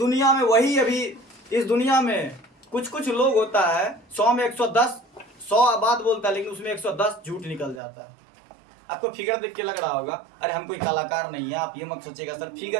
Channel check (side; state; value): left; drops out; at 7.8 s